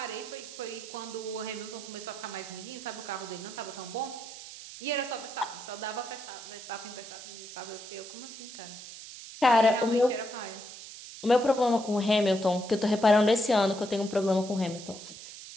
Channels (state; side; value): noise; right; hiss, 13 dB below the sound